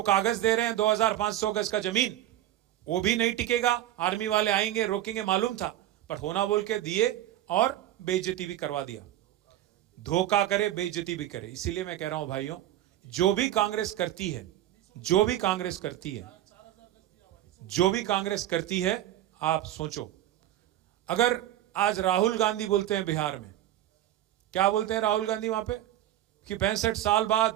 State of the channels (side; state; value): left; quieter; 13.2 dB